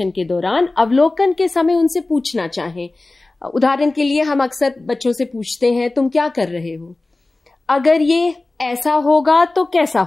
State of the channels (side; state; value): right; quieter; 3.1 dB